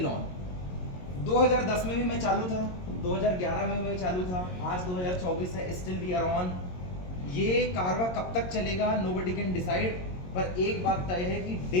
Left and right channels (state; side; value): late; right; 22 ms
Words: ऑन। 2010 में भी मैं चालू था, 2011 में मैं चालू था, आज 2024 है, स्टिल वी आर ऑन। ये कारवा कब तक चलेगा नोबडी कैन डिसाइड, पर एक बात तय है कि डे